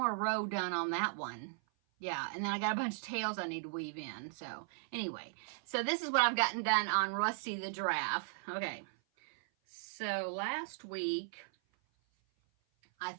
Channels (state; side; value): silent; left; 53 dB below the other